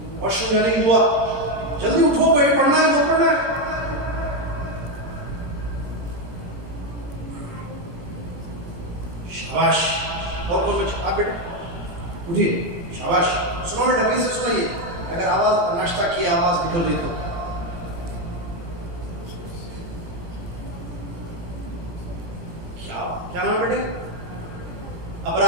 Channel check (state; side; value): late; left; 17 ms